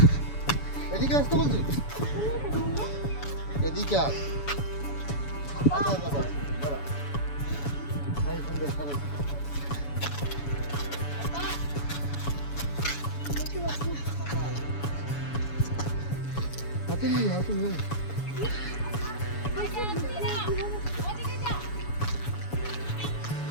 এদিকে আসতে বলছি, এদিকে আস। আচ্ছা আচ্ছা দাঁড়া, এই সুন্দর সরে। হাতে নিয়ে হাতে নিয়ে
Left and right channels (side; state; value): right; late; 7.0 ms